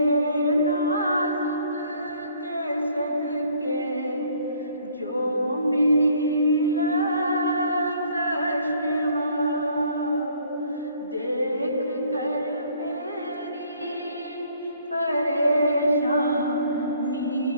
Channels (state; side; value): inverted; both; correlation -0.61